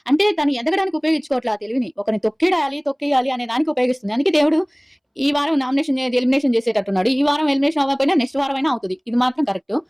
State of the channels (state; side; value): identical; both; correlation 1.00